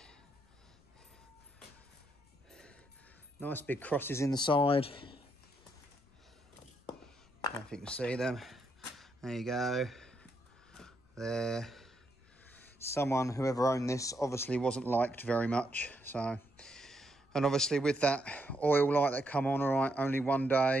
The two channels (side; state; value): left; noise; rumble, 30 dB below the sound